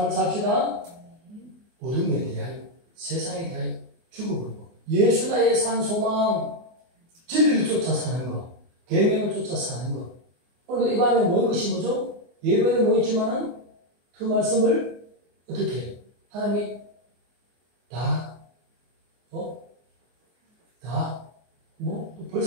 삽시다. 모든 데 대하여 세상에 대하여 죽어버리고 예수 나의 산 소망 진리를 쫓아 사는 것 계명을 쫓아 사는 것 오늘 이 밤에 모인 것이 뭐죠? 예배에 모였지만은 그 말씀을 어떻게 해요? 하나님이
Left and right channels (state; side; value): late; left; 24 ms